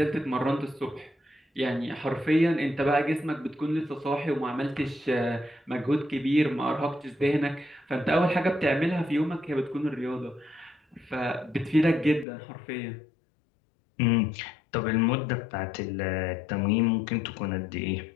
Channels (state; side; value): drops out; right; at 12.2 s